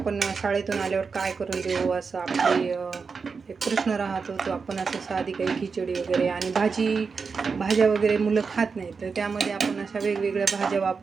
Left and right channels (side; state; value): left; quieter; 5.1 dB